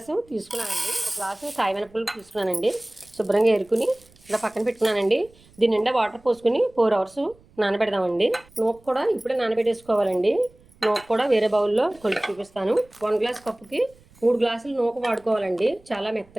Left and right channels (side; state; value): right; noise; rumble, 28 dB below the sound